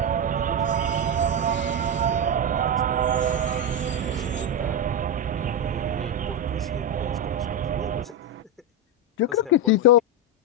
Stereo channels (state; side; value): normal; both; correlation 0.08